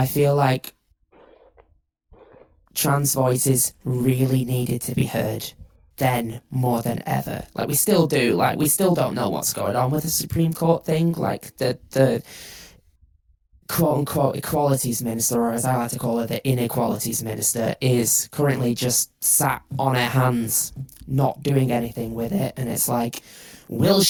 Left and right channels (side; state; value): both; identical; correlation 1.00